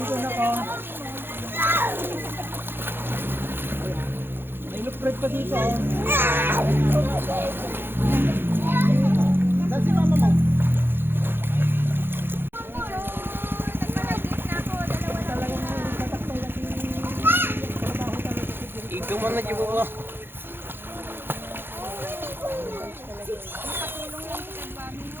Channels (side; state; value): left; late; 0.10 ms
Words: na ko. May electric pa dito. Saan si mama mo? Ikaw man na jibo mo.